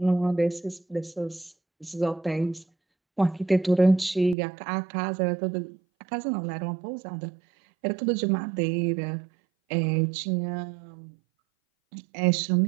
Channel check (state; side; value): drops out; left; at 4.4 s